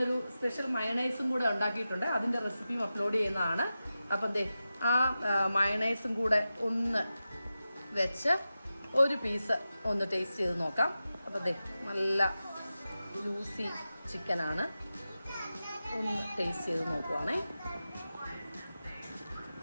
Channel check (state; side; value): inverted; both; correlation -0.93